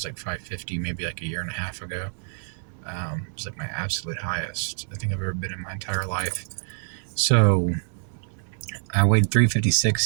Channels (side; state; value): left; silent; 61 dB below the other